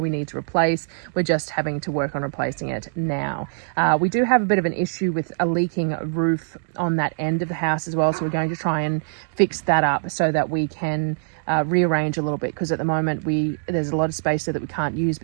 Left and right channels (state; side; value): silent; left; digital silence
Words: we need to replace. We're just having to work on replacing it now. We do have a bit of an issue with a leaking roof on that end of the house as well, so we're going to try and fix that up so that we can rearrange a little bit, because at the moment there's a lot of space there that we can't use